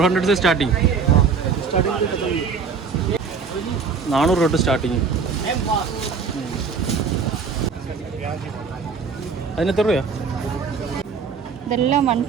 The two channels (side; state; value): left; quieter; 5.5 dB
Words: से स्टार्टिंग. 400 തൊട്ട് സ്റ്റാർട്ടിങ്. അതിനെത്ര രൂപ? ഇതെല്ലാം